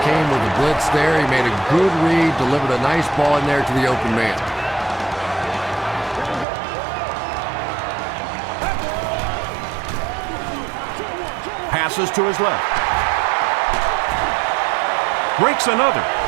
came with a blitz there. He made a good read, delivered a nice ball in there to the open man. Passes to his left. Breaks another.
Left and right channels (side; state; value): left; drops out; at 6.5 s